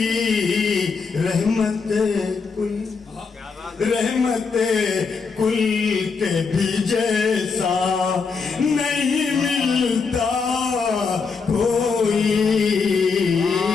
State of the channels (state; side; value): quieter; right; 5.1 dB